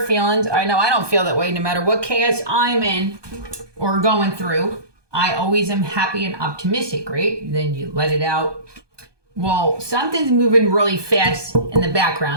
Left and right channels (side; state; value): left; late; 1.2 ms